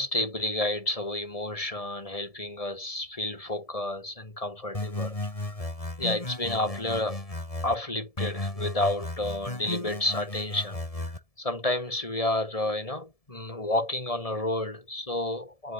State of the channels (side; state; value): right; late; 1.7 ms